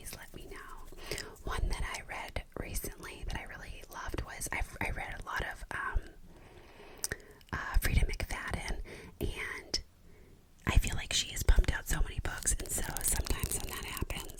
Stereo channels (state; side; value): identical; both; correlation 1.00